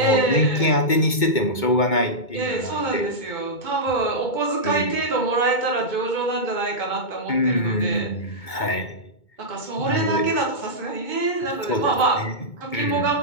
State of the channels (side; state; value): right; late; 2.2 ms